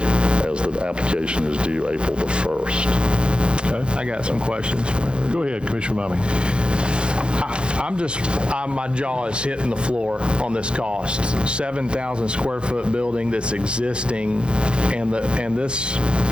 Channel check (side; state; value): left; late; 0.054 ms